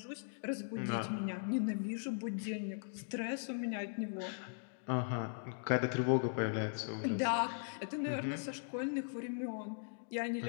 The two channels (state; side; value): silent; right; digital silence